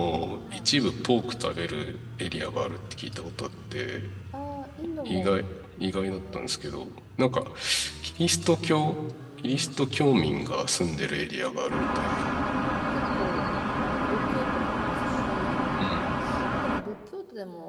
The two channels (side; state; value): both; identical; correlation 1.00